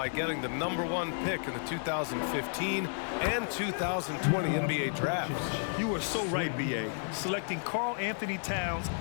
getting the #1 pick in the 2015 and 2020 NBA drafts. You are so right, B.A. Selecting Karl Anthony Towns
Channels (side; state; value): right; silent; digital silence